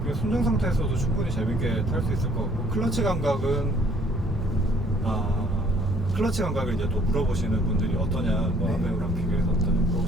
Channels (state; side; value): normal; both; correlation 0.60